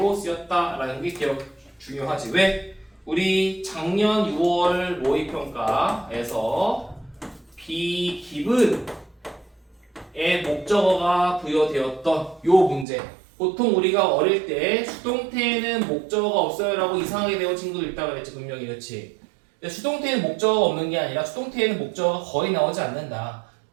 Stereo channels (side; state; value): left; drops out; at 12.9 s